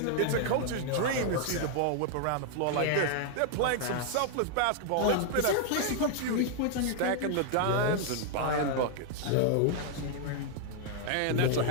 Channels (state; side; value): different; both; correlation 0.00